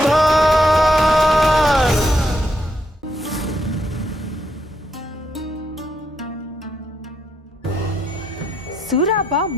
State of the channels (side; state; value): both; normal; correlation 0.77